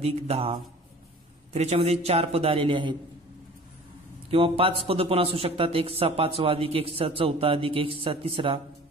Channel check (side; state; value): both; normal; correlation 0.44